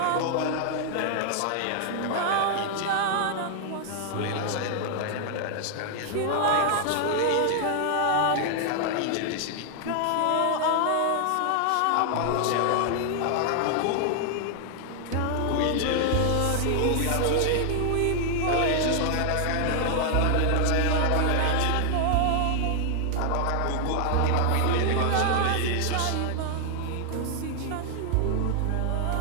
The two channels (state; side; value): different; both; correlation 0.00